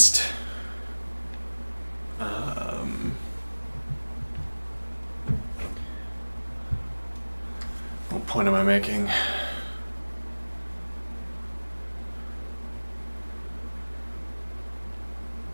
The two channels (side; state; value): both; inverted; correlation -1.00